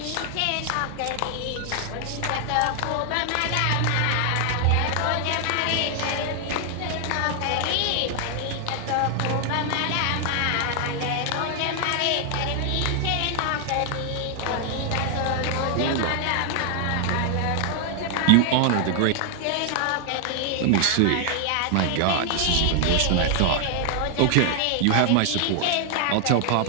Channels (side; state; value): both; different; correlation 0.00